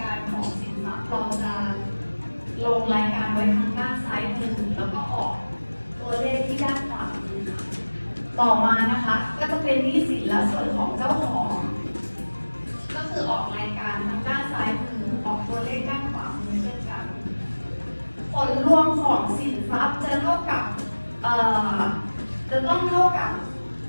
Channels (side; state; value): both; inverted; correlation -1.00